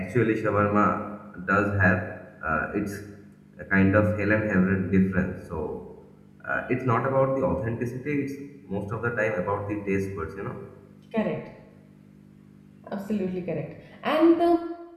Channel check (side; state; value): both; identical; correlation 1.00